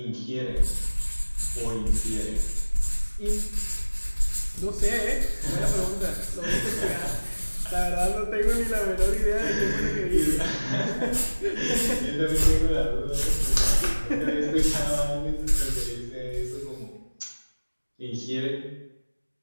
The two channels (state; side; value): inverted; both; correlation -1.00